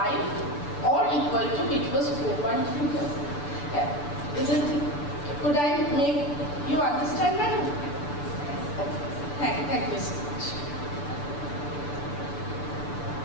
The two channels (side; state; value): right; late; 6.9 ms